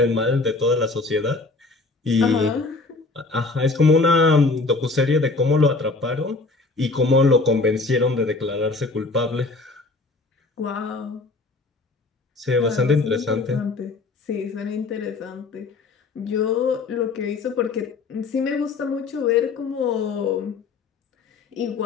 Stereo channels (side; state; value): right; quieter; 3.7 dB